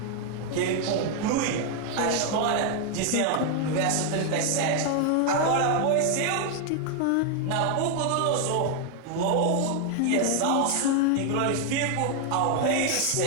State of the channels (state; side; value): different; both; correlation 0.01